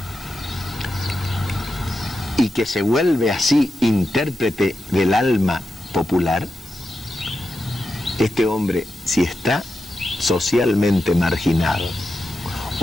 y que se vuelve así intérprete del alma popular, este hombre, si está socialmente marginado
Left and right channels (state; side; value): normal; both; correlation 0.89